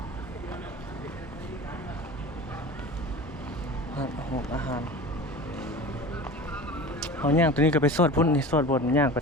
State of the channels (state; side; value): normal; both; correlation 0.35